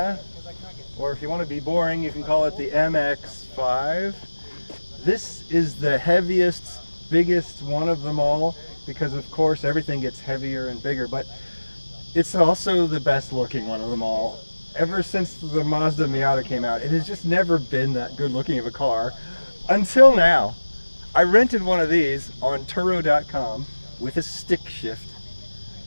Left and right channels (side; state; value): both; inverted; correlation -1.00